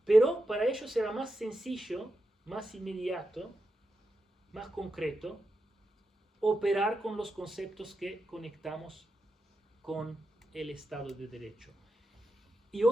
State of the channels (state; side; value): normal; both; correlation 0.88